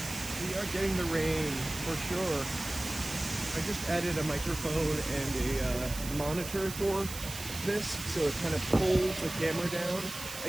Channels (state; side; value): noise; right; hiss, 10 dB below the sound